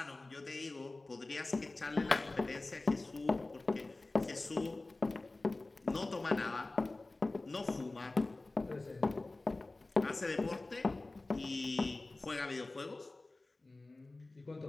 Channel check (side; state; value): right; quieter; 3.1 dB